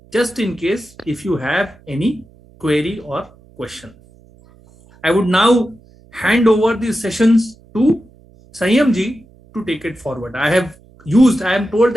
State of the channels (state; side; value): noise; right; hum, 27 dB below the sound